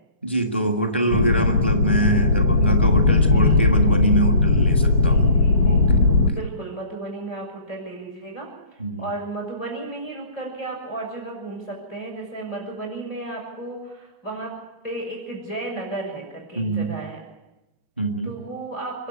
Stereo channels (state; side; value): inverted; both; correlation -0.49